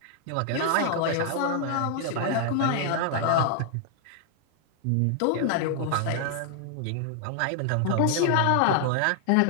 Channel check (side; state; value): both; different; correlation -0.01